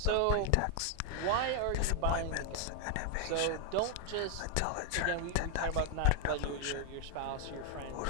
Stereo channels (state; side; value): different; both; correlation 0.00